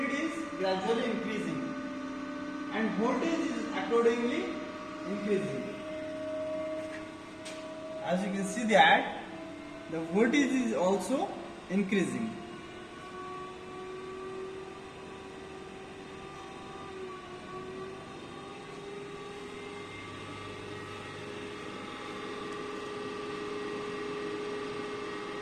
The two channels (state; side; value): identical; both; correlation 1.00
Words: is gradually increasing, and voltage is accordingly increasing. As you can see that the voltage is also increasing.